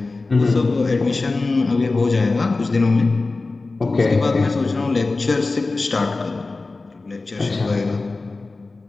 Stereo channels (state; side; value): quieter; right; 3.5 dB